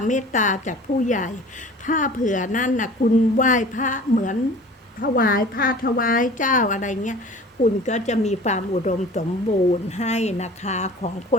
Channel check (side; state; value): both; normal; correlation 0.44